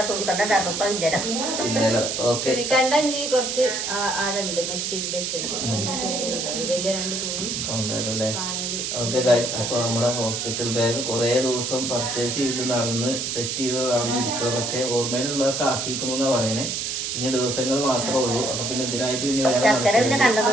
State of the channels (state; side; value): noise; right; hiss, 2 dB below the sound